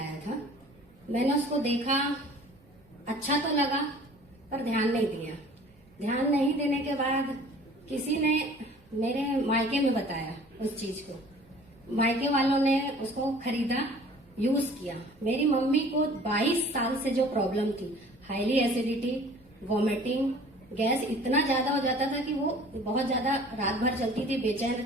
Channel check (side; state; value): right; noise; rumble, 29 dB below the sound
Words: था। मैंने उसको देखा, अच्छा तो लगा पर ध्यान नहीं दिया। ध्यान नहीं देने के बाद किसी ने मेरे मायके में बताया उस चीज को। मायके वालों ने उसको खरीदा, यूज किया। मेरी मम्मी को 22 साल से जो प्रॉब्लम थी, हाईली एसिडिटी, वॉमिटिंग, गैस इतना ज्यादा हो जाता था कि वो बहुत ज्यादा रात भर चलती थी, बेचैन